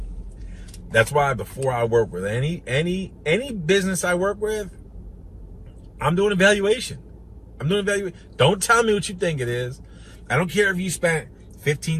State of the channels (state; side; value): identical; both; correlation 1.00